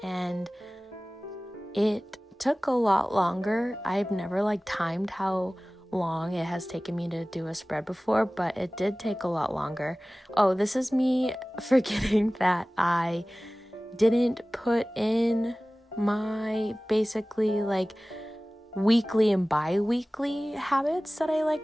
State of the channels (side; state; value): both; normal; correlation 0.98